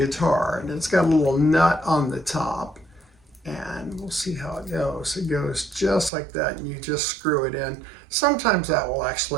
and it's got a little nut on the top, and we'll see how it goes. It goes just like that, and you just screw it in. Sometimes that will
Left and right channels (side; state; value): left; drops out; at 6.1 s